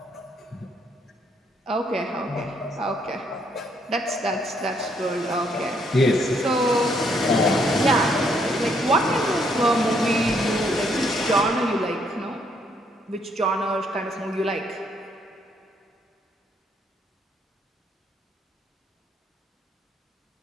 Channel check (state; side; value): normal; both; correlation 0.71